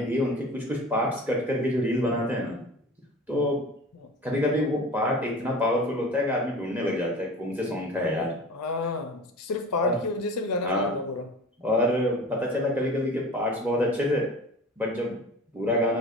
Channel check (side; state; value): both; normal; correlation 0.37